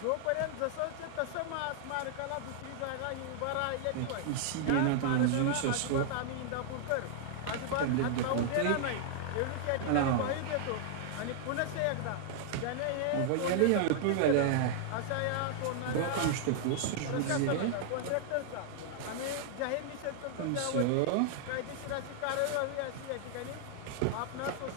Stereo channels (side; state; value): both; different; correlation -0.01